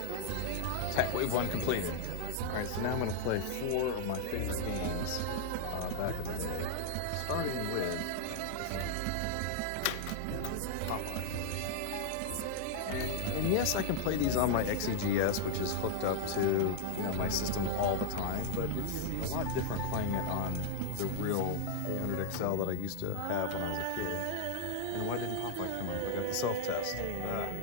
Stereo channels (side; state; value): both; different; correlation 0.00